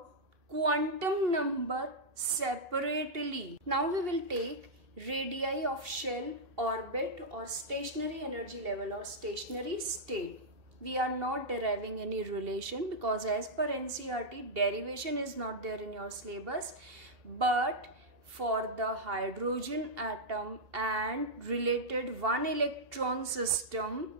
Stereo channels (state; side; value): late; left; 2.7 ms